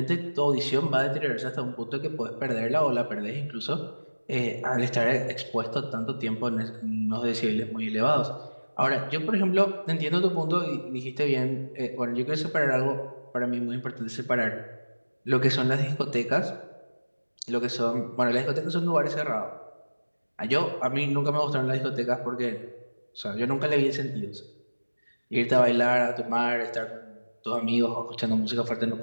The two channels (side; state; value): both; inverted; correlation -1.00